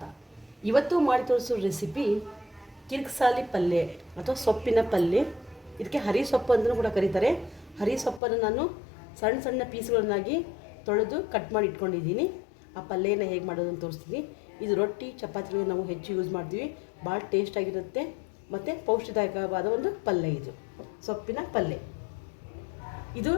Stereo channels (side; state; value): right; drops out; at 8.2 s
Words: ಇವತ್ತು ಮಾಡಿ ತೋರಿಸೋ ರೆಸಿಪಿ ಕಿರ್ಕ್ಸಾಲಿ ಪಲ್ಯ ಅಥವಾ ಸೊಪ್ಪಿನ ಪಲ್ಯ. ಇದಕ್ಕೆ ಹರಿ ಸೊಪ್ಪು ಅಂತಲೂ ಕೂಡ ಕರೀತಾರೆ. ಹರಿ ಸೊಪ್ಪನ್ನು ನಾನು ಸಣ್ಣ ಸಣ್ಣ ಪೀಸ್ಗಳನ್ನಾಗಿ ತೊಳೆದು ಕಟ್ ಮಾಡಿ ಇಟ್ಕೊಂಡಿದ್ದೀನಿ. ಆ ಪಲ್ಯನ ಹೇಗೆ ಮಾಡೋದು ಅಂತ ತೋರಿಸ್ತೀನಿ. ಇದು ರೊಟ್ಟಿ ಚಪಾತಿಗೆ ನಾವು ಹೆಚ್ಚು ಯೂಸ್ ಮಾಡ್ತೀವಿ. ಭಾಳ ಟೇಸ್ಟಾಗಿರುತ್ತೆ ಮತ್ತು ಪೌಷ್ಟಿದಾಯಕವಾದ ಒಂದು ಪಲ್ಯ. ಇದು ಸೊಪ್ಪಿನ ಪಲ್ಯ. ಇದು